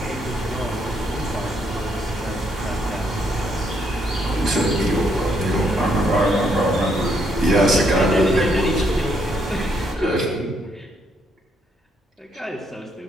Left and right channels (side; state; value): both; normal; correlation 0.73